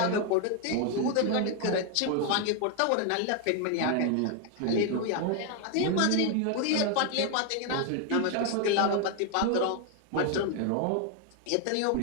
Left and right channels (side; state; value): both; different; correlation 0.01